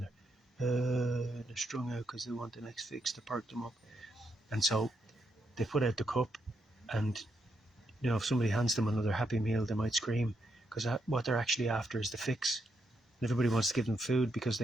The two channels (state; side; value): normal; both; correlation 0.80